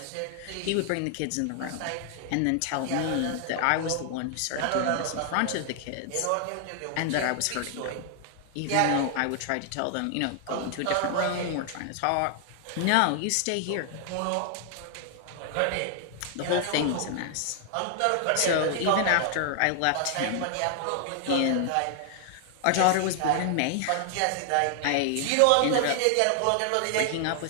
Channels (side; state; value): both; different; correlation 0.00